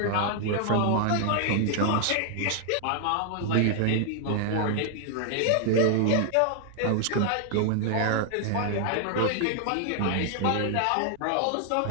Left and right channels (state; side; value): different; both; correlation 0.00